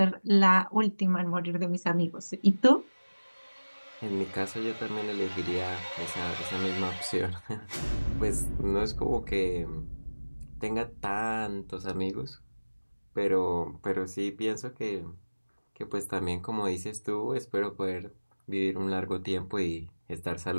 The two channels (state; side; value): inverted; both; correlation -1.00